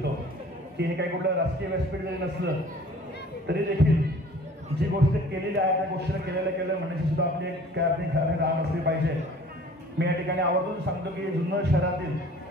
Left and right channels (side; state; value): both; normal; correlation 0.49